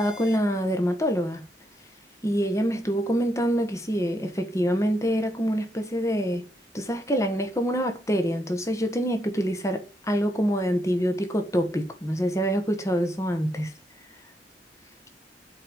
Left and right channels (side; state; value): both; normal; correlation 0.79